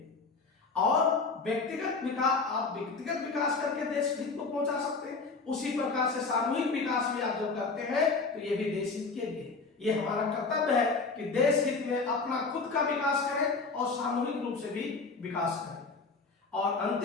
और व्यक्तिगत विकास, आप व्यक्तिगत विकास करके देश हित को पहुंचा सकते हैं, उसी प्रकार से सामूहिक विकास भी आप जो करते हैं तो ये भी देश हित के लिए। ये हमारा कर्तव्य है कि देश हित में अपना खुद का विकास करें और सामूहिक रूप से भी विकास करें। और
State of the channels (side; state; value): right; quieter; 4.2 dB